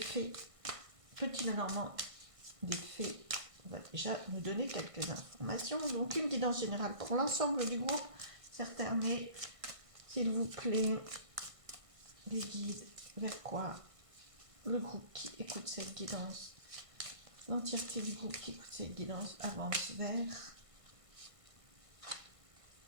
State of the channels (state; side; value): late; left; 1.5 ms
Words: Petit Lenormand des fées, va déjà nous donner quelques informations. Donc une guidance générale pour l'ensemble du groupe. Certains, mais s'il vous plaît, les guides vers quoi? Le groupe qui écoute cette guidance, l'entièreté du groupe qui écoute cette guidance avance vers.